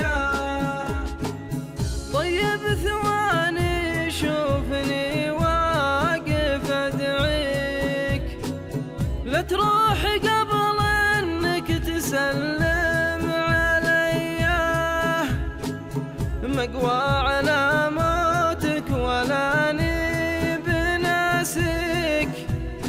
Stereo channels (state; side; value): identical; both; correlation 1.00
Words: طيب ثواني شوفني واقف ادعيك، لا تروح قبل انك تسلم عليا، مقوى على موتك ولا بناسك،